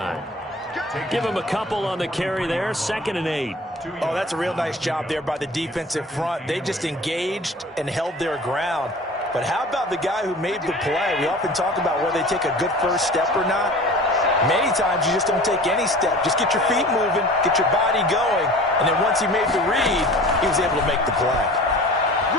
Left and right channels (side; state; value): both; normal; correlation 0.42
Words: Give him a couple on the carry there. 2nd and 8. Oh, that's a real nice job there by the defensive front. They just engaged and held their ground. But how about the guy who made the play? We often talk about whether they take a good first step or not. Many times you just don't take any step. Just get your feet moving, get your body going, and then once he made the read, he was able to make the play.